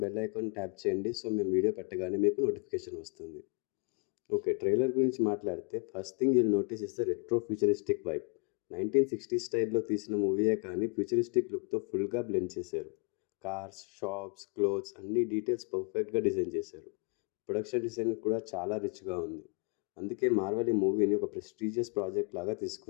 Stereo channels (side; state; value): right; quieter; 36.0 dB